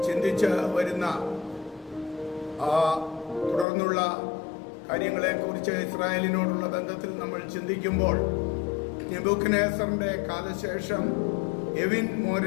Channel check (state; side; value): drops out; right; at 3.7 s